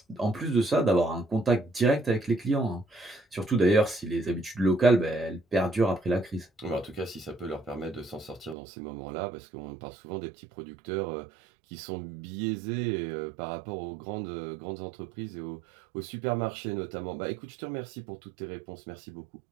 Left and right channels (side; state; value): left; drops out; at 8.6 s